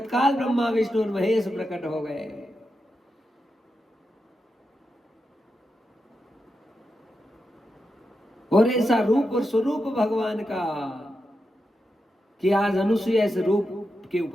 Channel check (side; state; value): both; normal; correlation 0.88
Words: ब्रह्मा विष्णु और महेश प्रकट हो गए। और ऐसा रूप और स्वरूप भगवान का कि आज अनुसुईया इस रूप के